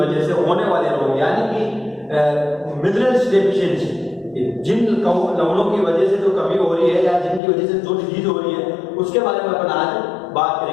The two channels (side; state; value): right; drops out; at 7.4 s